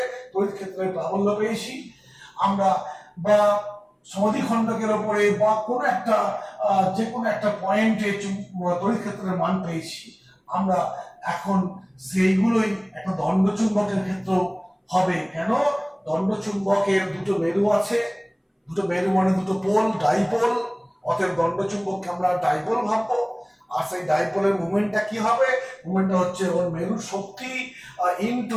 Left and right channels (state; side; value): identical; both; correlation 1.00